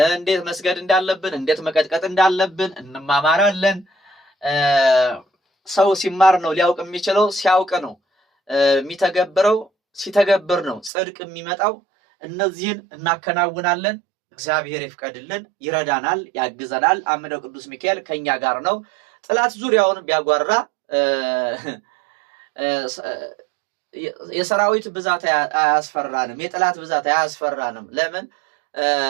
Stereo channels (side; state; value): left; drops out; at 10.9 s